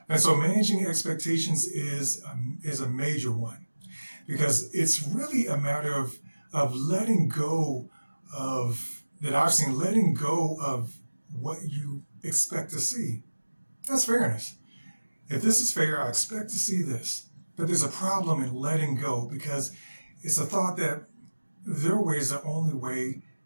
And so managing expectations is a major one because it's really a matter of letting go of, that I've seen, letting go of what you expect to see. That's fairness. If this is fair, I expect to see this. But there's a problem in letting go because it's a thought that their way is the only way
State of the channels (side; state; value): both; inverted; correlation -1.00